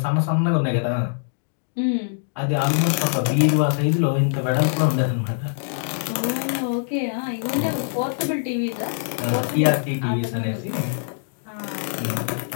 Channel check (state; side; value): silent; right; digital silence